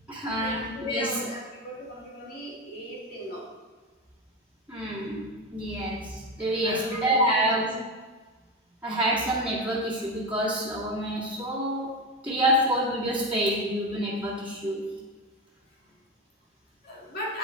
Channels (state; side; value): normal; both; correlation 0.18